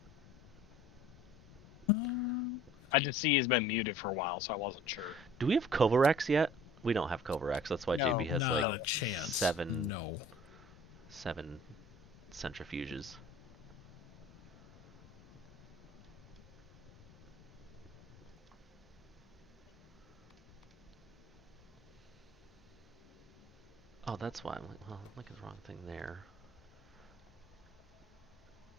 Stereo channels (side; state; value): both; normal; correlation 0.50